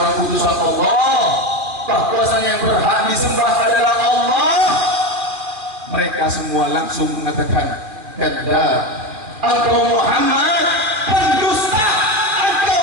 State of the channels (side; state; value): left; late; 2.4 ms